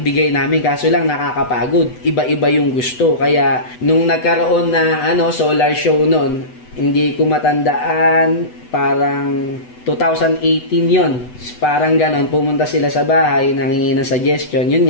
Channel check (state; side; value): late; right; 8.0 ms